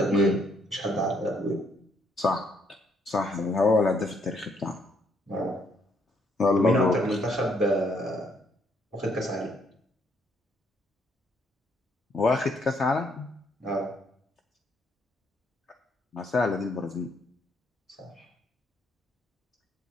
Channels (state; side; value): normal; both; correlation 0.70